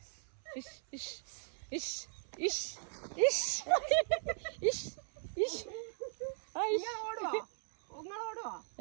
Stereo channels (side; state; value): left; silent; 52 dB below the other